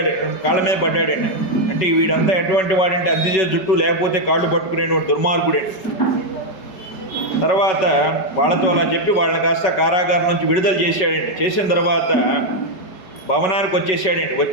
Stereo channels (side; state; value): right; late; 5.3 ms